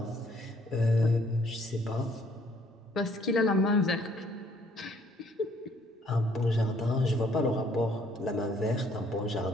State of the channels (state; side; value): normal; both; correlation 0.63